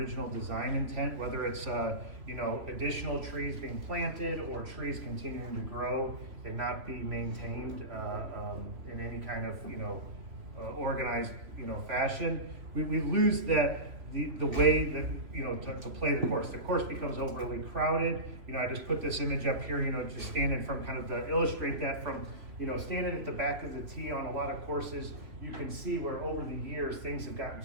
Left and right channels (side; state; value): left; late; 2.9 ms